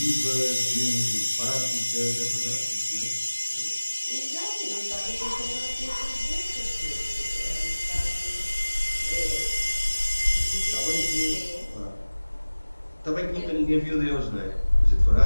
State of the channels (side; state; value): both; inverted; correlation -1.00